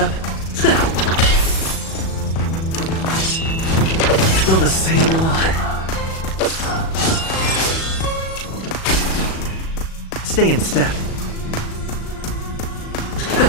Still the same one. Stay in step.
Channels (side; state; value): right; late; 37 ms